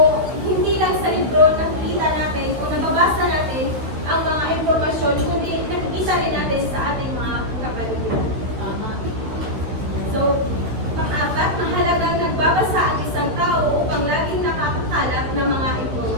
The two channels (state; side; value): late; left; 13 ms